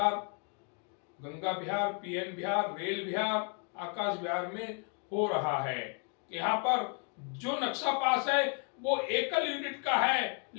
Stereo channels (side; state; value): right; quieter; 37.8 dB